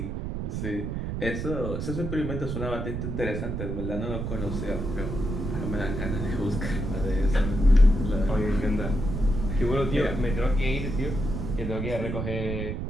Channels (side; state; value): right; noise; rumble, 3 dB below the sound